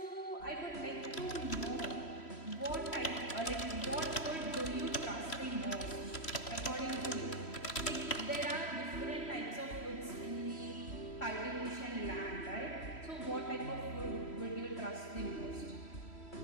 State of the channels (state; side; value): late; right; 3.1 ms